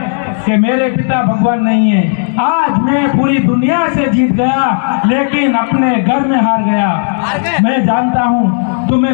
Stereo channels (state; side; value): silent; right; digital silence